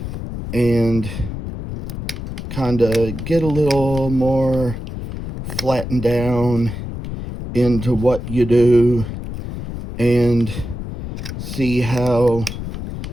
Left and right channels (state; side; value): noise; left; rumble, 7 dB below the sound